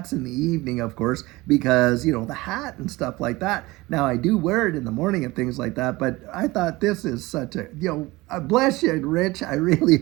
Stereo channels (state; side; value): quieter; left; 20.8 dB